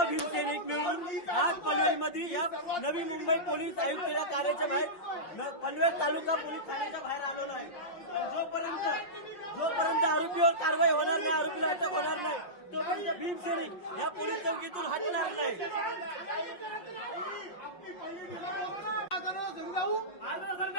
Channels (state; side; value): late; right; 5.8 ms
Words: भीमसैनिक मिळून आज पनवेलमध्ये या नवी मुंबई पोलीस आयुक्ताच्या कार्याच्या बाहेर पनवेल तालुका पोलीस ठाण्याच्या बाहेर आलेलो आहे। जोपर्यंत आरोपीवर कारवाई होणार नाही, आरोपीला अटक होणार नाही, तोपर्यंत भीमसैनिक या पोलीस चौकीतून हटणार नाही।